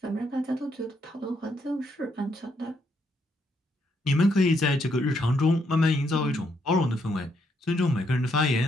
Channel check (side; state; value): both; normal; correlation 0.75